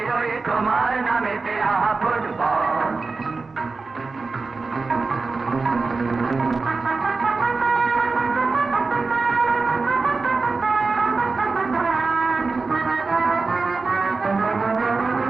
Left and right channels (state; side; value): quieter; left; 4.0 dB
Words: ওই তোমার নামেতে আহা ফুটবল।